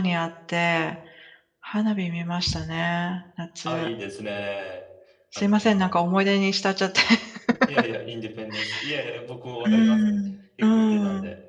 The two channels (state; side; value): identical; both; correlation 1.00